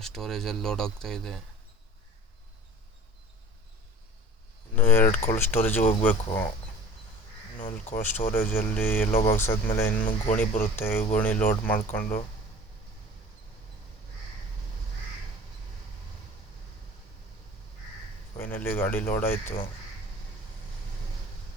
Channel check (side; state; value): both; normal; correlation 0.42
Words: ಸ್ಟೋರೇಜಲ್ಲಿ ಲೋಡ್ ಆಗ್ತಾ ಇದೆ. ಇನ್ನು 2 ಕೋಲ್ಡ್ ಸ್ಟೋರೇಜಿಗೆ ಹೋಗಬೇಕು. ಇನ್ನು ಕೋಲ್ಡ್ ಸ್ಟೋರೇಜಲ್ಲಿ ಎಲ್ಲೋ ಬಾಕ್ಸ್ ಆದಮೇಲೆ ಇನ್ನು ಗೋಣಿ ಬರುತ್ತೆ. ಗೋಣಿ ಲೋಡ್ ಮಾಡಿಕೊಂಡು ಫೈನಲಿ ಗಾಡಿ ಲೋಡ್ ಆಯಿತು.